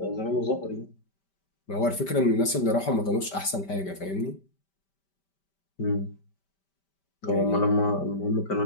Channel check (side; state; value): right; late; 5.1 ms